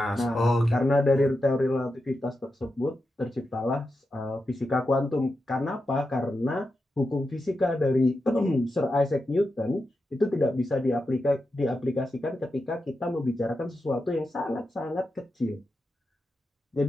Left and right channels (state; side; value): normal; both; correlation 0.89